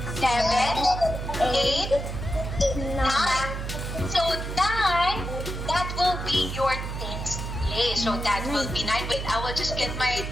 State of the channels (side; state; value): right; noise; hum, 5 dB below the sound